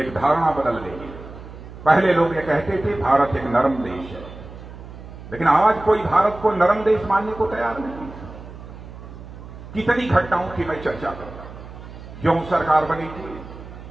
धारणा बदल गई है। पहले लोग ये कहते थे भारत एक नरम देश है, लेकिन आज कोई भारत को नरम देश मानने को तैयार नहीं। कितनी घटनाओं की मैं चर्चा करता हूं। जो सरकार बनी थी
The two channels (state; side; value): noise; right; hum, 14 dB below the sound